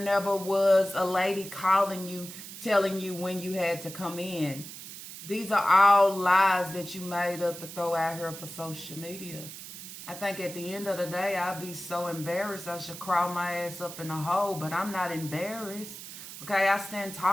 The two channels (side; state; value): right; noise; hiss, 12 dB below the sound